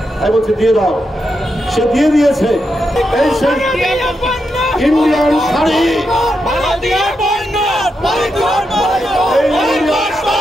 আমি বলছি দিয়ে দাও, সে দিয়ে দিয়েছে। এই সেই ইন্ডিয়ান শাড়ি,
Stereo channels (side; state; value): both; normal; correlation 0.85